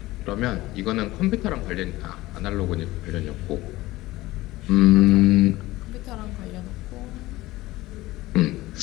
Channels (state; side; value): quieter; right; 18.3 dB